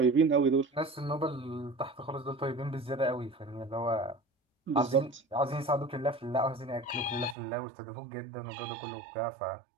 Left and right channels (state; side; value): drops out; left; at 7.4 s